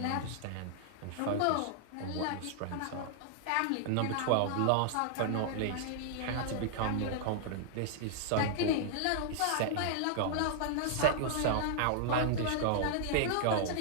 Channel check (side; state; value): both; different; correlation -0.01